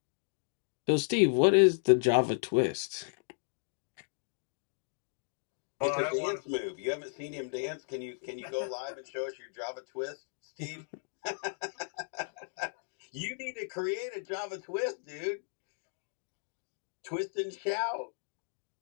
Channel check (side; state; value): right; silent; digital silence